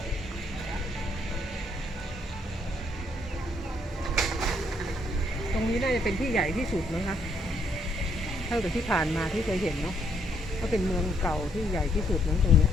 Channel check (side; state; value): both; normal; correlation 0.72